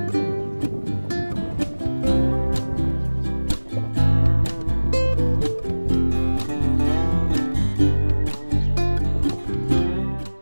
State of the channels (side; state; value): both; inverted; correlation -1.00